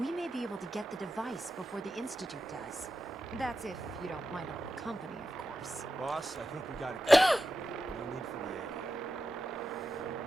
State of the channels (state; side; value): normal; both; correlation 0.90